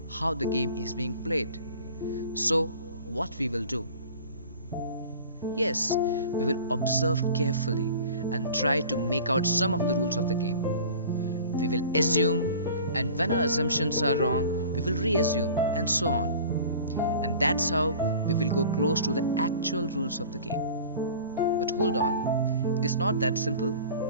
how the game is being played. So, what we will do? Yes, we will observe carefully and try to make out some of the rules of the game. We will assume, and when our assumptions are wrong, we will reassume, and so on. And that's how we will go close to the actual rules of the game. But hold on, it is not that simple.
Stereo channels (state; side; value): inverted; both; correlation -0.42